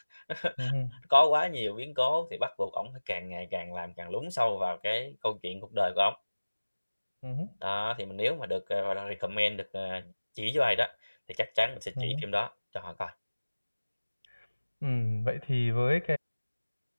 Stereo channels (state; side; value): inverted; both; correlation -1.00